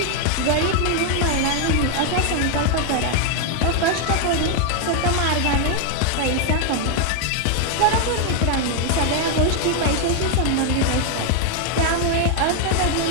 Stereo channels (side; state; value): both; different; correlation 0.00